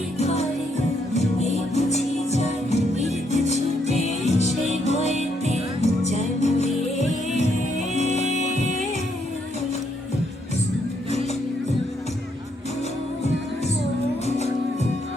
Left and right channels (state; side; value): normal; both; correlation 0.74